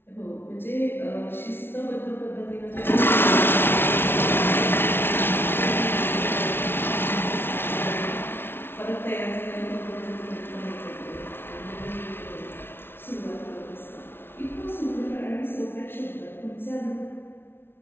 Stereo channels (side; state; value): right; late; 0.11 ms